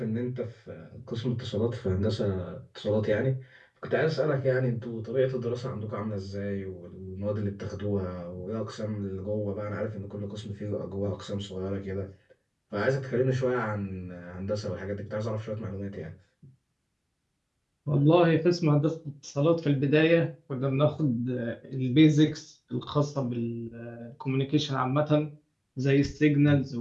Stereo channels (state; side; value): identical; both; correlation 1.00